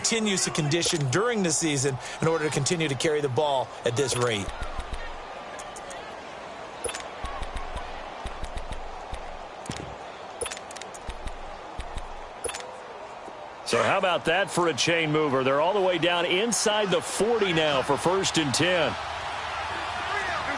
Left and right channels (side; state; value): both; identical; correlation 1.00